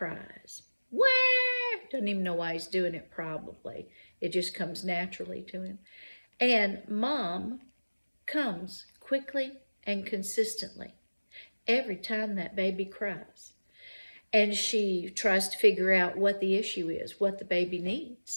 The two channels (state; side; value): inverted; both; correlation -1.00